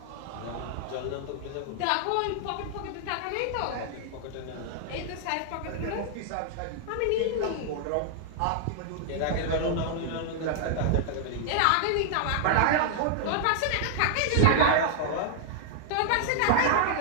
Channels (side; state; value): both; different; correlation -0.01